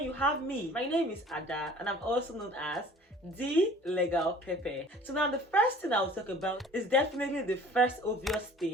you have me? My name is Ada and I'm also known as Thelegalpepper. So now the first thing I'll talk about is definitely the first obvious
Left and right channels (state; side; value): normal; both; correlation 0.48